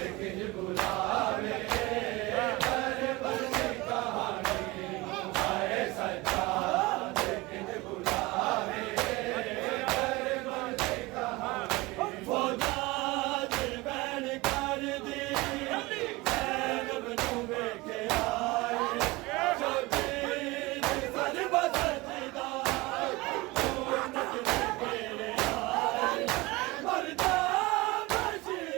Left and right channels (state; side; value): quieter; left; 22.2 dB